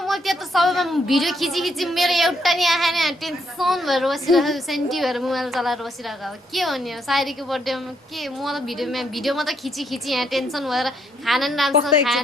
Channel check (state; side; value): normal; both; correlation 0.74